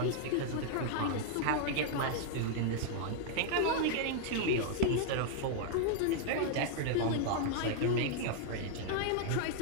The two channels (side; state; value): both; different; correlation -0.01